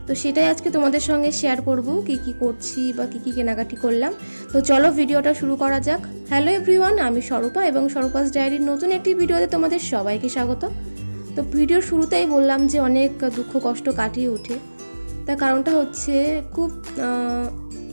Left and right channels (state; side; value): inverted; both; correlation -1.00